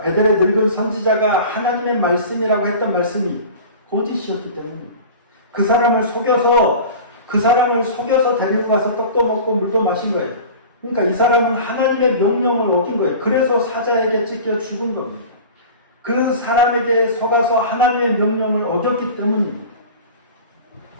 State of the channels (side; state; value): both; inverted; correlation -0.37